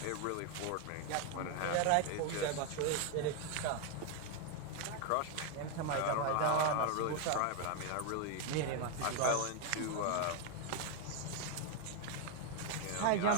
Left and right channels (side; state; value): both; different; correlation 0.01